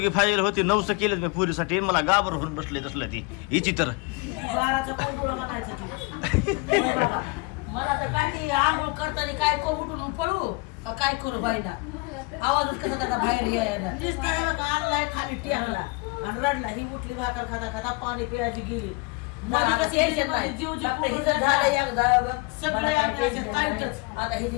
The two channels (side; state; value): right; quieter; 27.4 dB